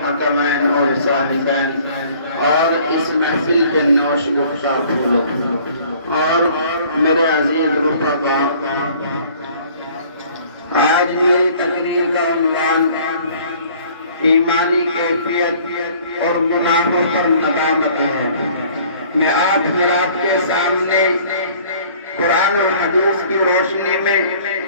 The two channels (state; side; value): inverted; both; correlation -0.54